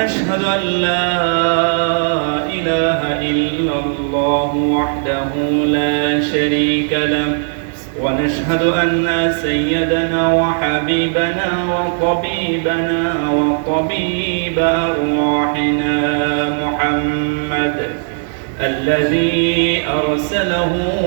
أن لا إله إلا الله وحده لا شريك له. ونشهد أن سيدنا وحبيبنا وطبيبنا وطبيب أرواحنا محمد الذي أرسله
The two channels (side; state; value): left; silent; 68 dB below the other